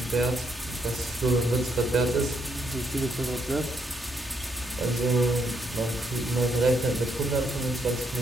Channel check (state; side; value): normal; both; correlation 0.76